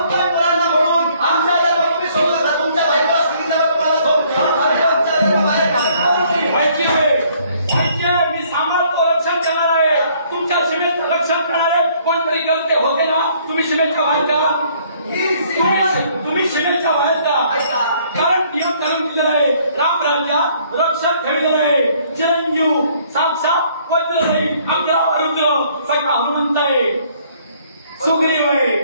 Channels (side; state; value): both; inverted; correlation -0.62